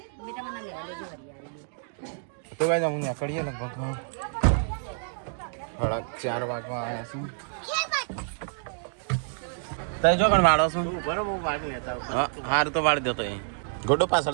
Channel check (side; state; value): left; silent; 59 dB below the other